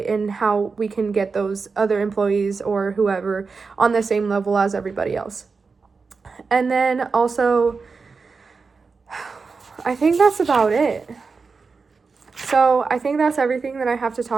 and how we can get those other employees or whoever on the same level as everybody else. And then also, I think that's about it. So I think that's everything that I have to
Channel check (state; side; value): quieter; left; 4.7 dB